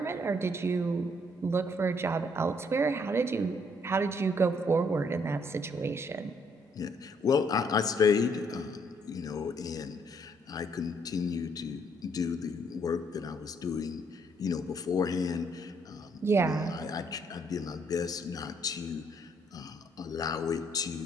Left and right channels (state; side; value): normal; both; correlation 0.68